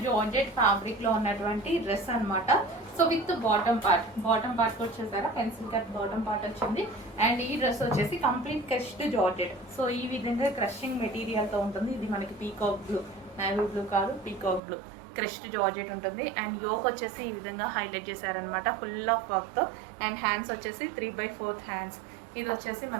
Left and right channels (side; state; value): left; drops out; at 14.6 s